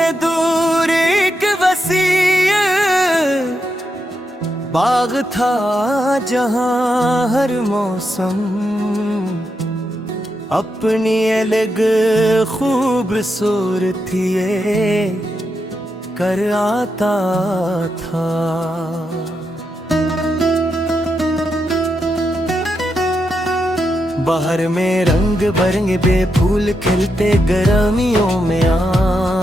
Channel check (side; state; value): both; normal; correlation 0.84